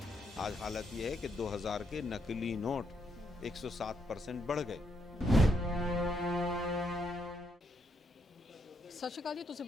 आज हालत ये है कि 2000 के नकली नोट 107% बढ़ गए। ਸਤਿ ਸ਼੍ਰੀ ਅਕਾਲ ਜੀ, ਤੁਸੀਂ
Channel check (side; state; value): both; normal; correlation 0.77